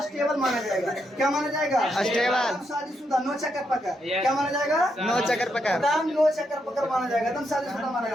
स्टेबल माना जाएगा। क्या माना जाएगा? स्टेबल। शादीशुदा, नो चक्कर पकड़। क्या माना जाएगा? नो चक्कर पकड़। नो चक्कर पकड़ माना जाएगा, एकदम शादीशुदा माना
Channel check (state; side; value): normal; both; correlation 0.80